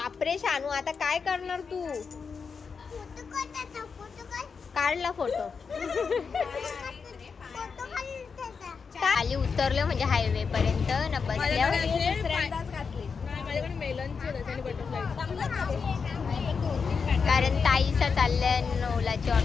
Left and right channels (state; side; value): quieter; right; 5.5 dB